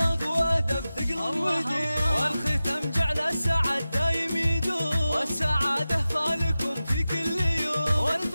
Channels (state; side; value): inverted; both; correlation -0.94